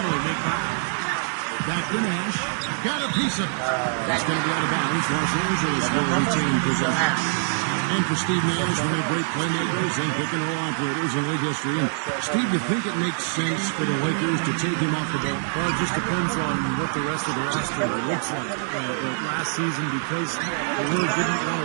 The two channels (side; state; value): left; silent; digital silence